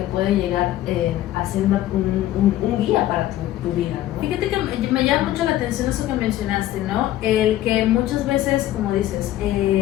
puede llegar a ser un guía para tu vida, ¿no? Fíjate que me llama mucho la atención eso que mencionaste, ¿no? El que muchas veces, como dices,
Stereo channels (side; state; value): right; quieter; 13.9 dB